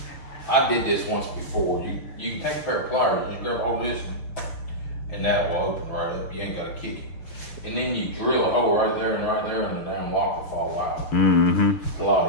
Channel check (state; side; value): late; right; 6.5 ms